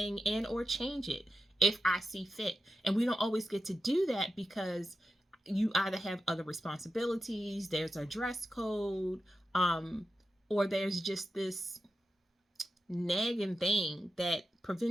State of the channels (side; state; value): both; normal; correlation 0.90